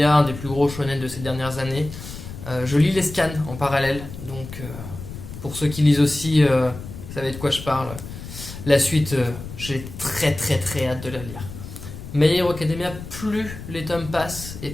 un des plus gros shonen de ces dernières années. Je lis les scans en parallèle. Donc, pour ceux qui lisent aussi, vous savez de quoi je parle. La suite, j'ai très hâte de la lire. My Hero Academia, plus les tomes passent et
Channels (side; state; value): left; noise; rumble, 11 dB below the sound